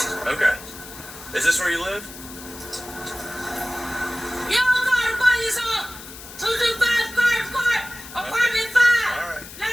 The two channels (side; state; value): left; noise; hiss, 15 dB below the sound